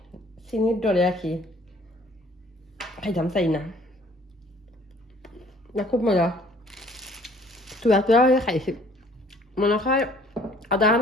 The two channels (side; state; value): both; normal; correlation 0.56